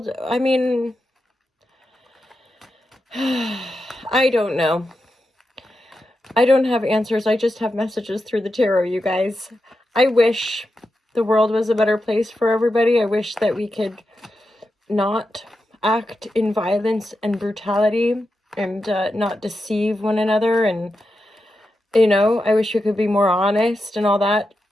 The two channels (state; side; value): normal; both; correlation 0.88